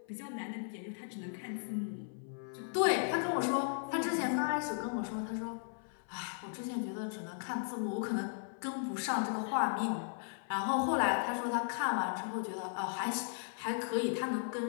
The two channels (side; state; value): right; silent; 53 dB below the other